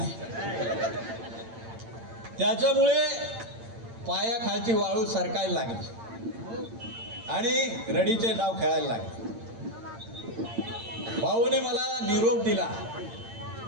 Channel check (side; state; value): left; late; 8.8 ms